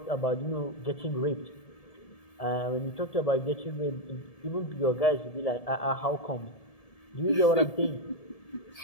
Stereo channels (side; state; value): right; late; 1.7 ms